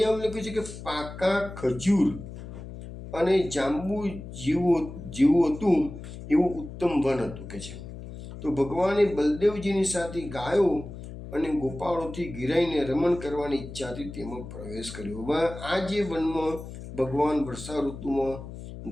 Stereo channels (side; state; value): left; noise; hum, 12 dB below the sound